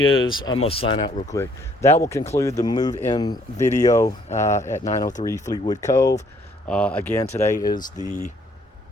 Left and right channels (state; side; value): normal; both; correlation 0.64